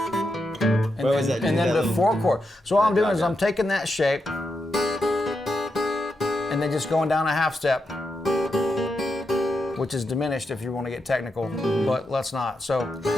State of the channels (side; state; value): both; normal; correlation 0.85